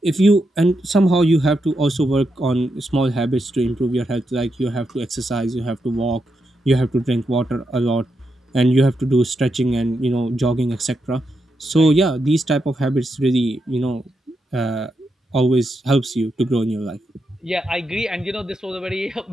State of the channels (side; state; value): both; normal; correlation 0.84